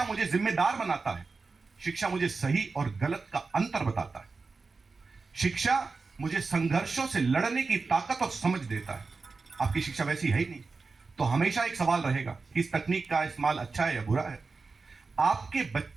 मुझे जिम्मेदार बनाता है, शिक्षा मुझे सही और गलत का अंतर बताता है, शिक्षा मुझे संघर्षों से लड़ने की ताकत और समझ देता है। आपकी शिक्षा वैसी है ही नहीं, तो हमेशा एक सवाल रहेगा कि इस तकनीक का इस्तेमाल अच्छा है या बुरा है। आपके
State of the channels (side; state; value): left; quieter; 4.3 dB